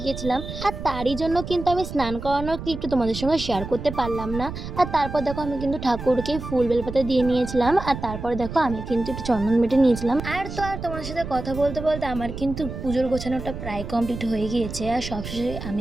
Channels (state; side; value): noise; right; rumble, 8 dB below the sound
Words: গিয়েছিলাম, আর তারই জন্য কিন্তু আমি স্নান করানোর ক্লিপটা তোমাদের সঙ্গে শেয়ার করতে পারলাম না। আর তারপর দেখো আমি কিন্তু ঠাকুরকে ফুল বেলপাতা দিয়ে নিয়েছিলাম, আর তারপর দেখো আমি কিন্তু একটু চন্দন বেটে নিয়েছিলাম। আর তো আর তোমাদের সাথে কথা বলতে বলতে আমার কিন্তু পুজোর গোছানোটা প্রায় কমপ্লিট হয়ে গিয়েছে, আর সবশেষে